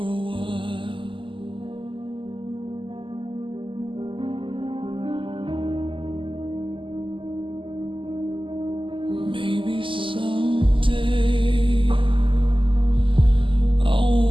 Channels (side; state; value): left; late; 0.25 ms